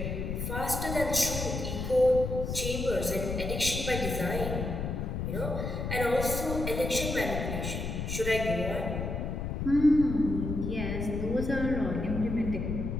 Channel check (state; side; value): noise; left; rumble, 3 dB below the sound